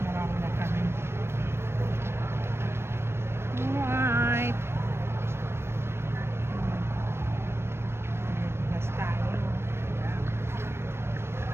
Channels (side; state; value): left; late; 0.12 ms